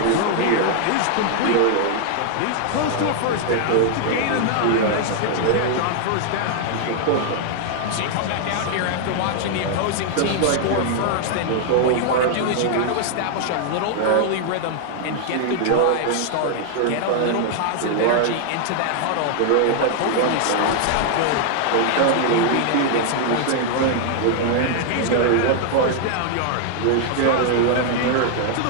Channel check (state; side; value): different; both; correlation 0.00